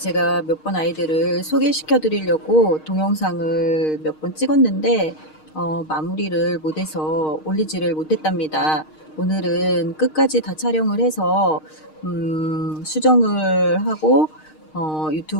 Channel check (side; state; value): right; late; 6.5 ms